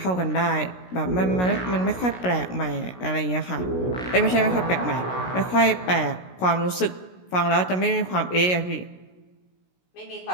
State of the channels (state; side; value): late; right; 16 ms